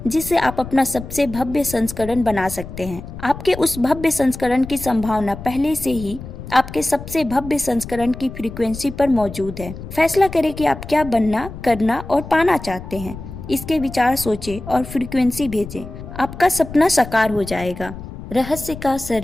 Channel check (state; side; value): noise; left; rumble, 12 dB below the sound